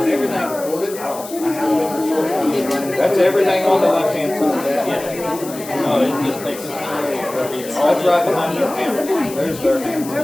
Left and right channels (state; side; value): noise; left; hiss, 14 dB below the sound